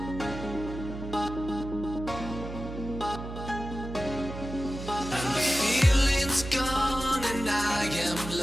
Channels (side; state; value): right; noise; hum, 9 dB below the sound